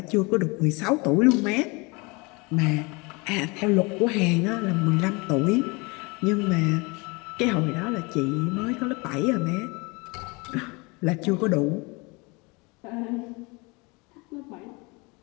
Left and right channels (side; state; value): right; quieter; 27.5 dB